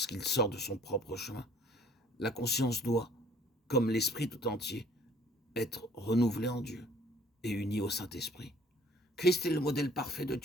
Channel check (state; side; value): normal; both; correlation 0.56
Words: sort de son propre chemin, la conscience doit, comme l'esprit tout entier, être renouvelée en Dieu et unie au Saint-Esprit. Christ est le modèle parfait de